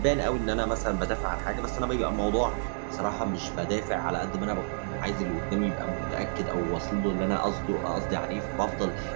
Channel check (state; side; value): silent; left; digital silence